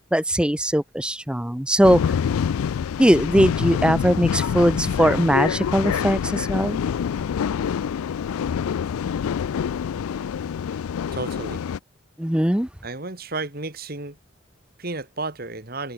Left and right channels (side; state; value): both; normal; correlation 0.71